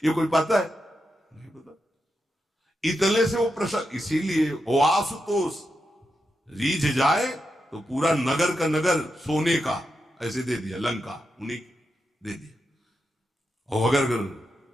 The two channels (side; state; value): both; normal; correlation 0.86